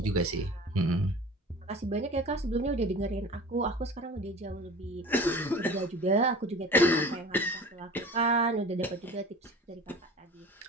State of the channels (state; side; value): normal; both; correlation 0.39